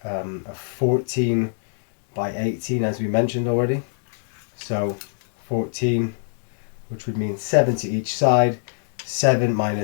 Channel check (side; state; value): right; silent; 63 dB below the other